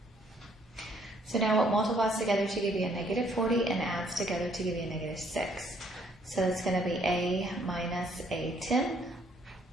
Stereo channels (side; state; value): both; normal; correlation 0.65